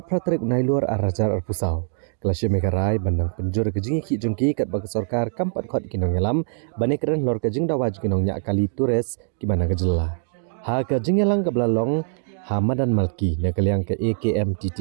praterik unailur arajar arpusau. Kelasya Megarai bandang penjur kejingi ki jengki kat bagi sorkar kampat khot kinong yalam bani keren lor kejing dawaj kinong nya kali turis ki bana kejela. Ha kejing yalang ke belalong Hamadan Malki nakaliang ke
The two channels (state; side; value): silent; left; digital silence